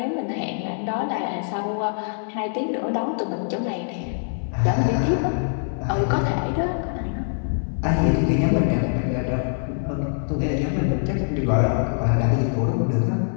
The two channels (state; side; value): silent; right; 62 dB below the other